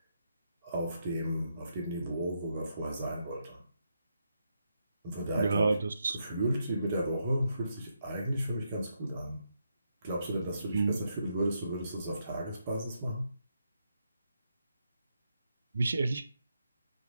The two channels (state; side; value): inverted; both; correlation -0.80